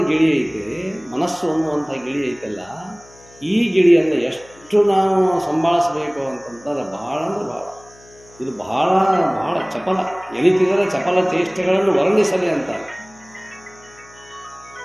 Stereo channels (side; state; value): left; noise; hum, 25 dB below the sound